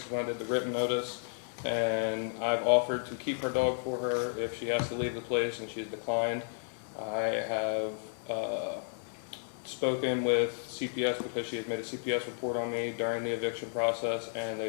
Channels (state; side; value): silent; right; 56 dB below the other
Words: is when I did the written notice, and I've offered to keep her dog for her if she has to leave the place, and she's declined. I have spoken with CPS because she had made a CPS report on me during the eviction process, and